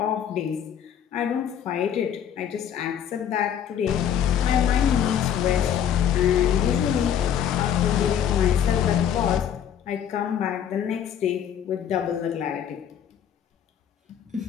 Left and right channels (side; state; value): right; quieter; 9.2 dB